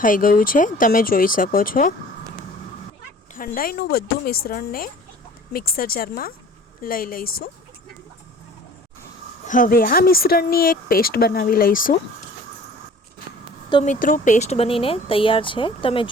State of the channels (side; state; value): both; normal; correlation 0.47